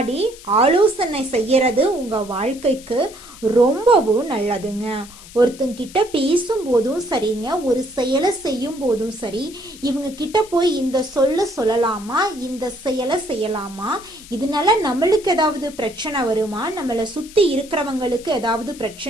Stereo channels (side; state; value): left; noise; hiss, 19 dB below the sound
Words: ஆலோசனை செய்யறது உங்க வாழ்க்கைக்கு ரொம்பவும் நல்லதுங்க. ஒருத்தங்கிட்ட பேசும் போதும் சரிங்க, ஒரு செயலை செய்யும் போதும் சரி, இவங்க கிட்ட போய் இந்த சொல்லலாமா, இந்த செயலை செய்யலாமா, இதனால நம்மளுக்கு ஏதாவது பிரச்சனை வருமா, நம்மளை சுத்தி இருக்கிறவங்களுக்கு ஏதாவது